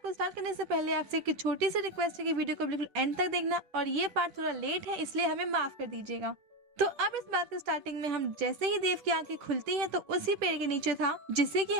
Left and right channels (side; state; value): left; late; 10 ms